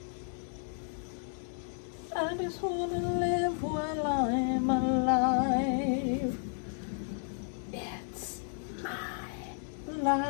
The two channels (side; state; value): right; silent; 56 dB below the other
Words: I just wanna live while I'm alive. It's my